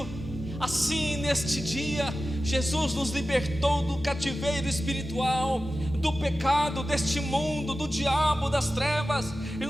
assim neste dia, Jesus nos libertou do cativeiro espiritual, do pecado deste mundo, do diabo, das trevas, e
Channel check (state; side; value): normal; both; correlation 0.94